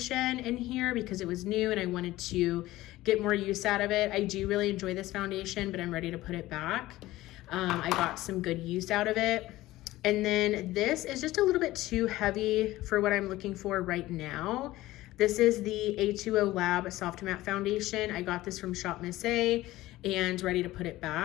in here because it was new and I wanted to get more use out of it. I do really enjoy this foundation, but I'm ready to put it back. I got some good use out of it. And then this is just a little bit too heavy for what I'm looking for right now. This is the A2O Lab Soft Matte Foundation. I got this from Shop Miss A and ready to put it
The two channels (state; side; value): quieter; right; 17.0 dB